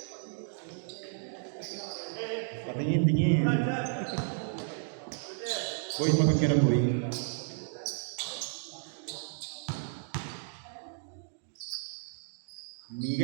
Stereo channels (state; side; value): silent; left; digital silence